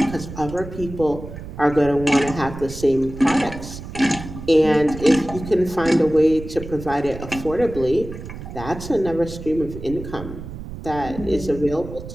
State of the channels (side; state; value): right; noise; rumble, 11 dB below the sound